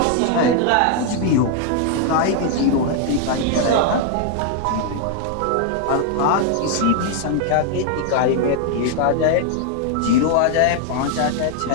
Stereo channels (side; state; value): both; different; correlation 0.00